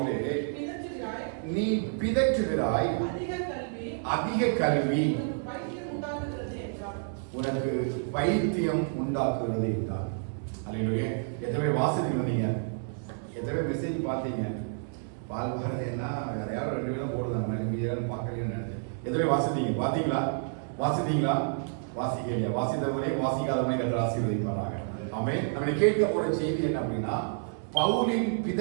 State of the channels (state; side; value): silent; left; digital silence